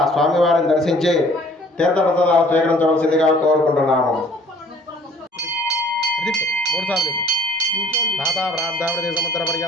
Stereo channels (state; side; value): normal; both; correlation 0.55